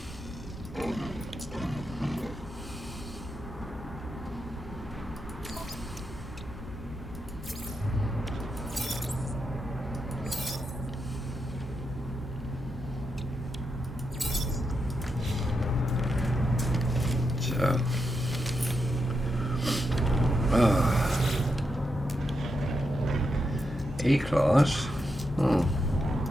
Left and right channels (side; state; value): both; normal; correlation 0.85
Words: So, A-class. A